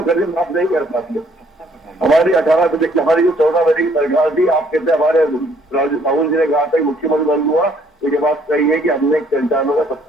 कर्जे माफ नहीं कर पाते। हमारी 18 बजे की, हमारी जो 14 बजे की सरकार थी, आप कहते हैं हमारे राहुल जी ने कहा था मुख्यमंत्री बन हुआ तो ये बात सही है कि हमने किसानों का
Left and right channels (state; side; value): normal; both; correlation 0.64